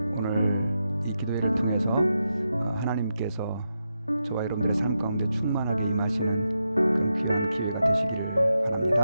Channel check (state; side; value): inverted; both; correlation -0.86